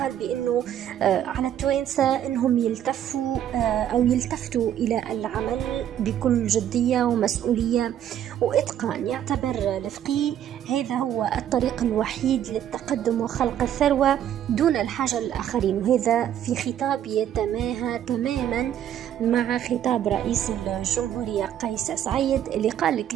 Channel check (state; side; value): quieter; left; 10.6 dB